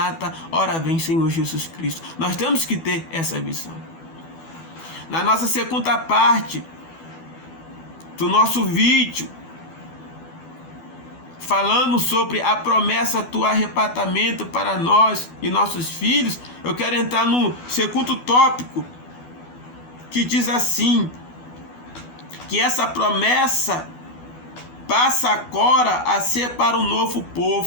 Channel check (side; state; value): right; late; 12 ms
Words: ora vem Senhor Jesus Cristo. Nós temos que ter essa visão. Na nossa segunda parte do nosso vídeo, falando sobre a promessa do arrebatamento para nós e nossos filhos, eu quero entrar no segundo tópico, que diz assim, que essa promessa passa agora a ser para o novo